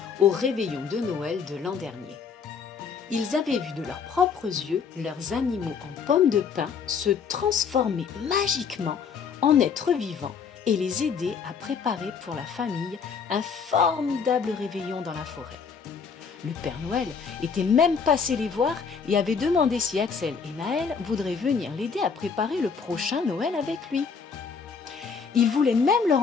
au réveillon de Noël de l'an dernier. Ils avaient vu de leurs propres yeux leurs animaux en pommes de pin se transformer magiquement en êtres vivants et les aider à préparer pour la famille un formidable réveillon dans la forêt. Le Père Noël était même passé les voir et avait demandé si Axel et Naël voudraient venir l'aider à préparer le prochain Noël avec lui. Il voulait même leur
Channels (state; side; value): quieter; right; 6.0 dB